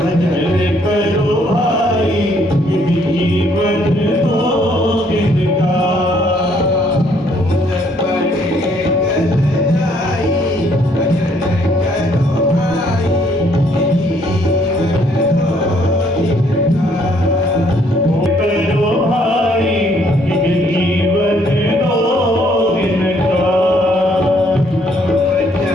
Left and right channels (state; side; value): normal; both; correlation 0.66